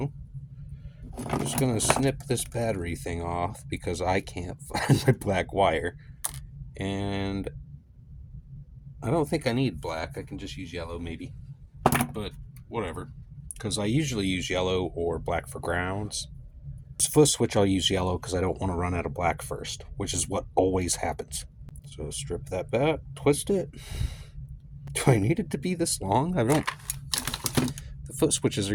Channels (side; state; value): both; identical; correlation 1.00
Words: I'm just going to snip this battery thing off because I can't find my black wire. And I don't think I need black. I can just use yellow maybe. But whatever. Because I usually use yellow or black for grounds. For switch, I'll use yellow because I don't want to run out of black first, which is what always happens. So strip that back, twist it. Do I need it to be this long? I don't. The foot switches